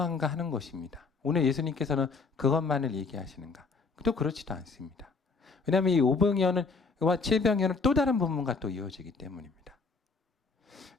하는 것입니다. 오늘 예수님께서는 그것만을 얘기하시는가? 또 그렇지도 않습니다. 왜냐하면 이 오병이어와 7병이어는 또 다른 부분과 또 이어지기 때문입니다.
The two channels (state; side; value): quieter; right; 4.5 dB